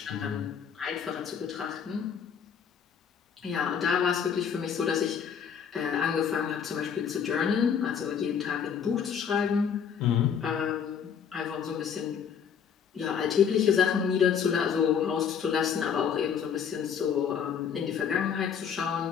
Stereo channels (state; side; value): quieter; right; 7.5 dB